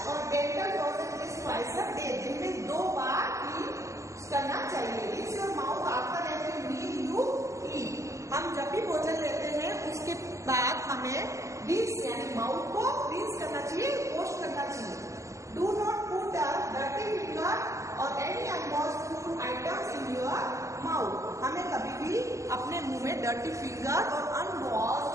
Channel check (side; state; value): left; late; 0.15 ms